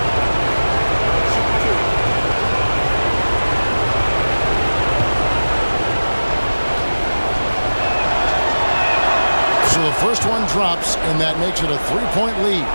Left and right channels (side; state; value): both; inverted; correlation -1.00